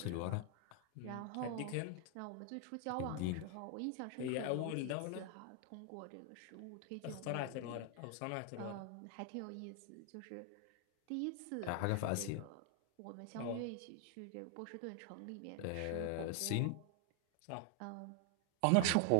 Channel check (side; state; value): both; different; correlation 0.00